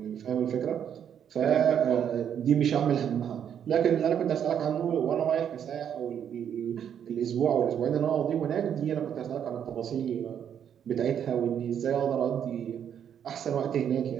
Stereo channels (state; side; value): quieter; left; 8.8 dB